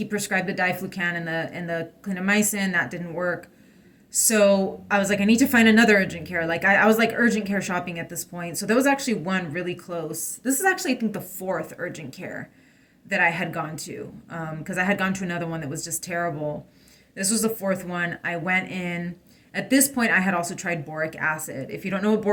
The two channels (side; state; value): both; identical; correlation 1.00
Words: prescribed the diflucan and the clindamycin. That didn't work. So I was like, I need to find another urgent care. Like I was like urgent care shopping at this point. So there was actually one really close. This is actually, I think, the fourth urgent care that I had gone to, because I had gone to another one that was just terrible. This was the fourth one. I went in. At this point, I had also tried boric acid. If you don't know what